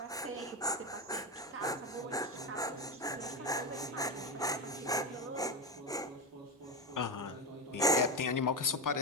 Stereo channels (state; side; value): normal; both; correlation 0.14